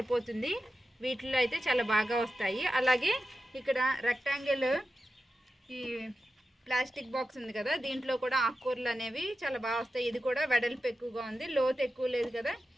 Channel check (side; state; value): both; normal; correlation 0.91